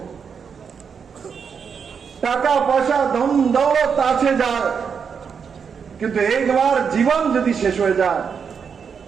টাকা পয়সা ধন দৌলত আছে যায়, কিন্তু একবার জীবন যদি শেষ হয়ে যায়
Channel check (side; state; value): left; quieter; 6.5 dB